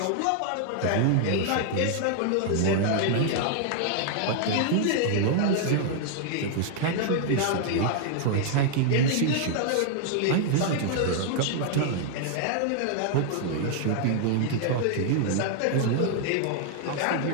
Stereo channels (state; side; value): different; both; correlation 0.00